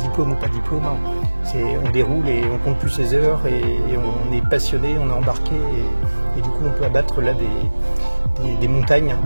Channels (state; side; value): inverted; both; correlation -1.00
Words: ou pas diplôme, on déroule et on compte plus ses heures et on est passionné, on est embarqué et du coup on peut abattre là des montagnes.